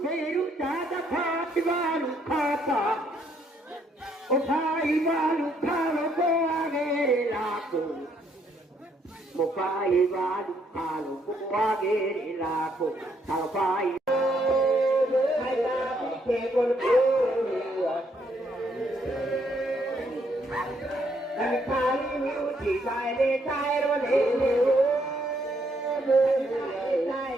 veru dada phati valu khata. Othai valu khalo ko agere lako. Mopai valu khalo ko agere lako. Thapai hai ta ke kon ko. Hai khali mi uthi sai le sai ro le le. Sai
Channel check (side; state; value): both; normal; correlation 0.71